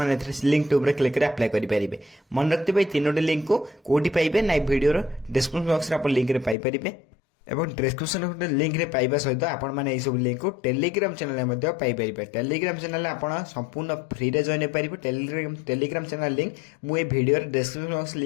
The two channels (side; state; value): right; drops out; at 6.6 s